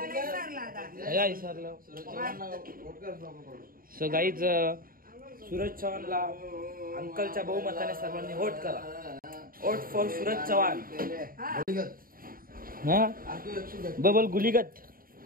काय विसरलो सो गाईज सूरज चव्हाणला अंकलच्या बहुमताने सर्वांनी वोट करा वोट फॉर सूरज चव्हाण हा बबल गुलीगत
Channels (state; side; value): late; left; 0.41 ms